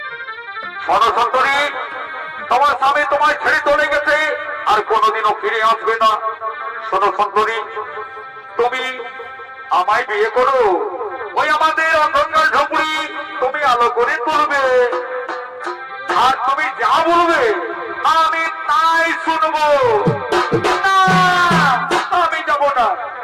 শোনো সুন্দরী, তোমার স্বামী তোমায় ছেড়ে চলে গেছে, আর কোনোদিনও ফিরে আসবে না। শোনো সুন্দরী, তুমি আমায় বিয়ে করো, ওই আমাদের অন্ধকার ঝুঁকুড়ি তুমি আলো করে তুলবে, আর তুমি যা বলবে আমি তাই শুনবো। না, আমি যাবো না।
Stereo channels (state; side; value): identical; both; correlation 1.00